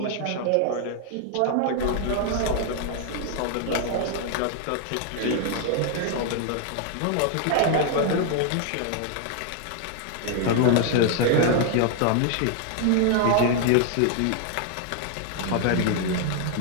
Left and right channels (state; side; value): different; both; correlation 0.00